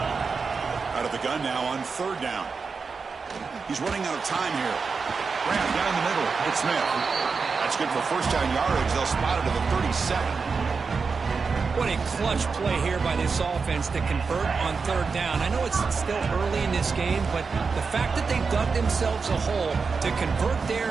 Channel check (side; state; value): left; quieter; 5.0 dB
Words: Out of the gun now on third down. He's running out of time here. Graham down the middle. It's Smith. That's good for first down yardage. They'll spot it to the 37. What a clutch play here by this offense to convert on third down. I know it's still early in this game, but the fact that they dug themselves a hole to convert there